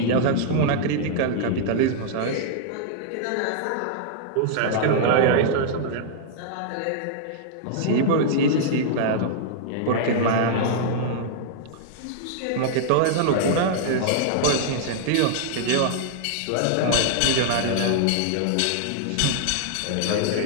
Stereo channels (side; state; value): both; different; correlation -0.01